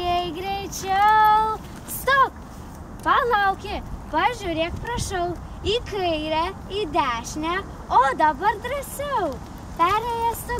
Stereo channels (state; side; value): identical; both; correlation 1.00